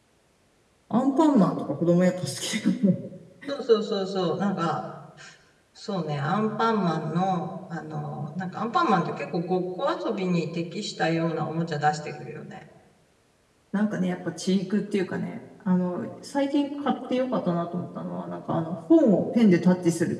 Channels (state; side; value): identical; both; correlation 1.00